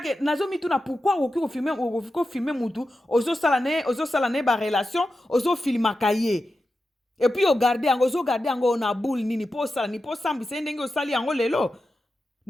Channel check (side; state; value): both; normal; correlation 0.91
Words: nazo mituna pourquoi ko filmer mutu ozo sala ne ba relation ozo filmaka ye et puis o garder yango na boule nini po sala ni po sambi se ndenge o sali yango lelo